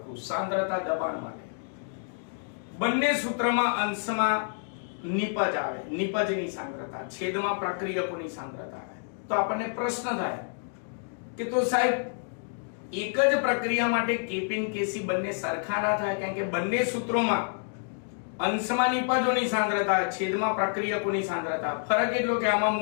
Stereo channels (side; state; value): right; silent; digital silence